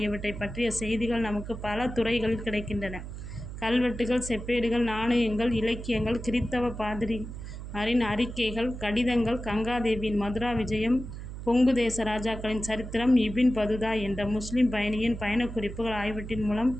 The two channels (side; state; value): right; noise; hum, 9 dB below the sound